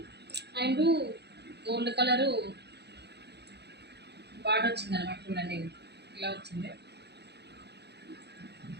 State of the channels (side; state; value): left; late; 0.49 ms